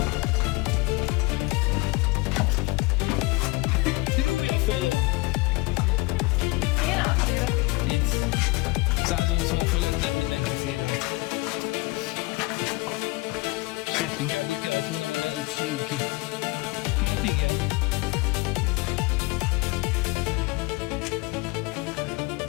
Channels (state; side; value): quieter; right; 23.9 dB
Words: Júj a fejem! Itt 180 fölött nem mindenki fér át. Sőt, inkább úgy kellett volna mondani, hogy senki. Hát igen.